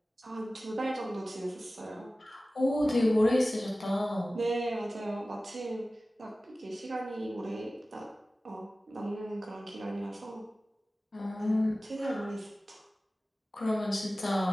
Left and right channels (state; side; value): normal; both; correlation 0.96